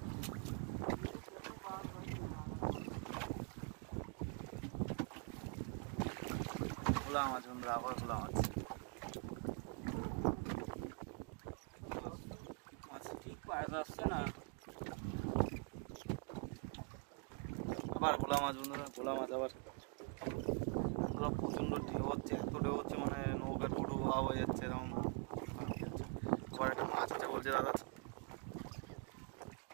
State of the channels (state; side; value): quieter; left; 34.2 dB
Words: ভোলা মাছ বন্ধুরা, আবার ভোলা মাছ। মাছ ঠিক পাওয়া যাচ্ছে না, আবার ভোলা মাছ বন্ধুরা, ভোলা মাছ আবার বন্ধুরা। প্রচণ্ড ঢেউ হচ্ছে, এত ঢেউ হচ্ছে মানে নৌকা ডুডু ভাব হয়ে যাচ্ছে এরকম। আবার একটা মাছ আছে বলছে দাদা,